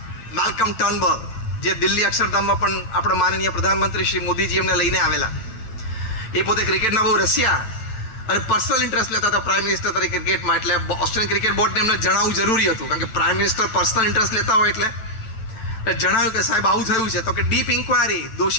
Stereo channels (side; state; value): right; late; 9.0 ms